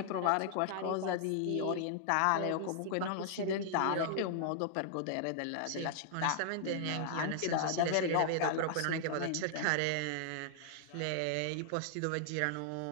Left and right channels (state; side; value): different; both; correlation -0.01